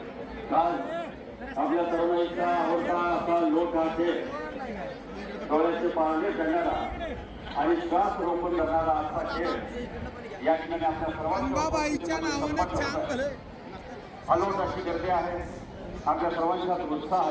काल आपल्या तरुणाईचा आवडता असा लोक हा खेळ डोळ्याचे पारणे करणारा आणि श्वास रोखून करणारा असा खेळ या ठिकाणी आपल्या सर्वांच्या अलोट अशी गर्दी आहे. आपल्या सर्वांचाच उत्साह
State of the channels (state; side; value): identical; both; correlation 1.00